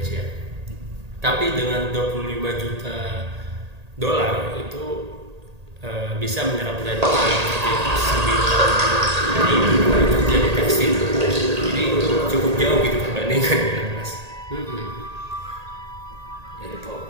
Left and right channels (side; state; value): left; late; 1.8 ms